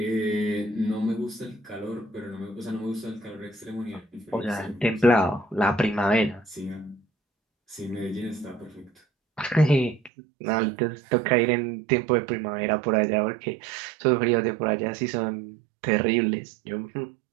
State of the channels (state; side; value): drops out; left; at 10.1 s